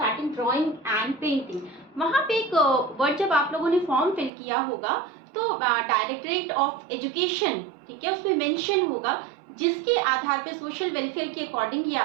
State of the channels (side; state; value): left; drops out; at 4.3 s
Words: ड्राइंग एंड पेंटिंग, वहां पे एक वर्ड जब आप लोगों ने फॉर्म फिल किया होगा तो डायरेक्टरेट ऑफ एजुकेशन, ठीक है, उसमें मेंशन होगा, जिसके आधार पे सोशल वेलफेयर के अकॉर्डिंग ये